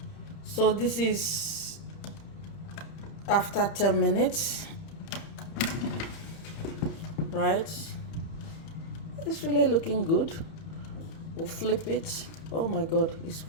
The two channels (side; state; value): right; late; 31 ms